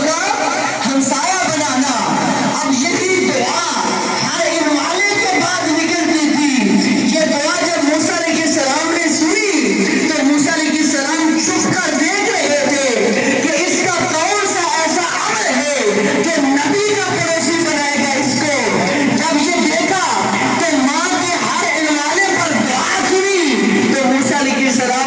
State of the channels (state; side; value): identical; both; correlation 1.00